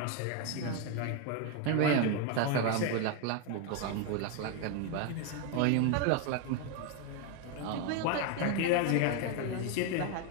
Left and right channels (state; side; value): different; both; correlation 0.01